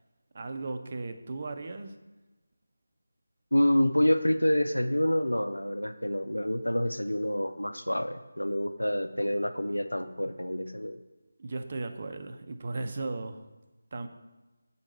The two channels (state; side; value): inverted; both; correlation -0.99